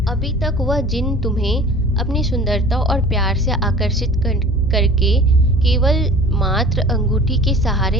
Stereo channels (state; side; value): normal; both; correlation 0.43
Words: अभी तक वह जिन तुम्हें अपनी सुंदरता और प्यार से आकर्षित करके केवल मात्र अंगूठी के